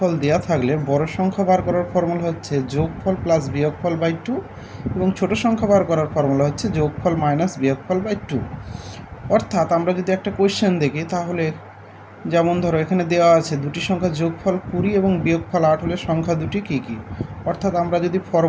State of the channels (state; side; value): identical; both; correlation 1.00